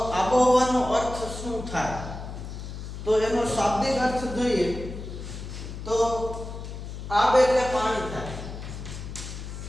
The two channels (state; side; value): noise; left; hum, 9 dB below the sound